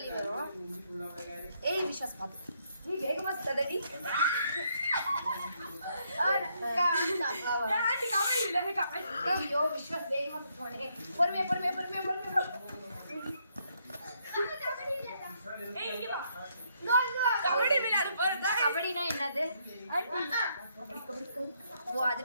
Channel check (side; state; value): both; inverted; correlation -0.73